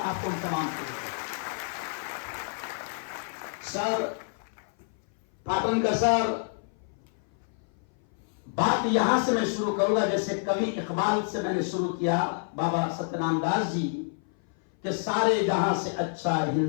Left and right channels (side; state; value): right; silent; 57 dB below the other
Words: तमाम के लिए। सर, पाटन का सर, बात यहां से मैं शुरू करूंगा जैसे कवि इकबाल से मैंने शुरू किया, बाबा सत्यनारायण दास जी, कि सारे जहां से अच्छा